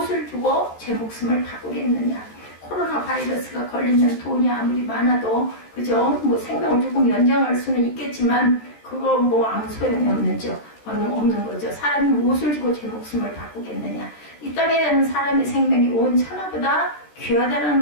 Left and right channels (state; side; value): late; right; 13 ms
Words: 주고 제 목숨을 바꾸겠느냐? 코로나 바이러스가 걸리면 돈이 아무리 많아도 그죠? 뭐 생명을 조금 연장할 수는 있겠지만 그거 뭐 아무 소용이 없는 거죠. 사람이 무엇을 주고 제 목숨을 바꾸겠느냐? 이 땅에 사는 사람의 생명이 온 천하보다 귀하다는